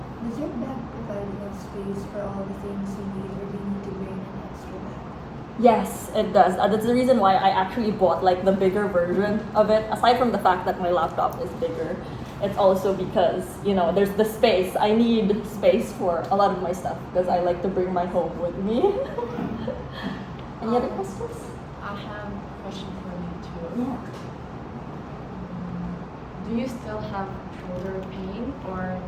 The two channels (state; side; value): identical; both; correlation 1.00